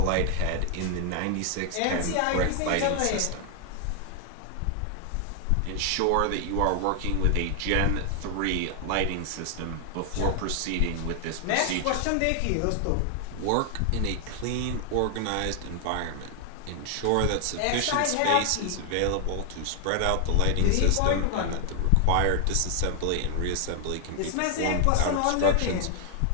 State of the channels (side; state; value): both; different; correlation 0.00